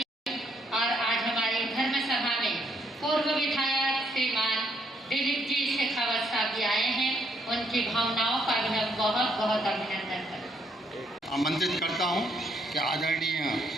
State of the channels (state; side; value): normal; both; correlation 0.71